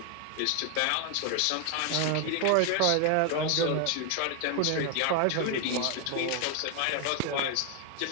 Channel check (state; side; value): different; both; correlation 0.00